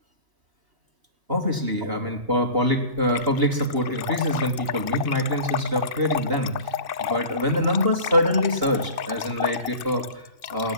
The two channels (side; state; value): left; late; 2.6 ms